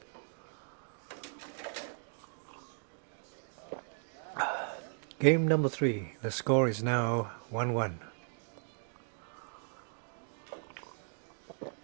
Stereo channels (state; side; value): silent; left; 53 dB below the other